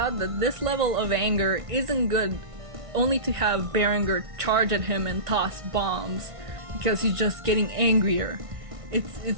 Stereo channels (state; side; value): late; left; 1.5 ms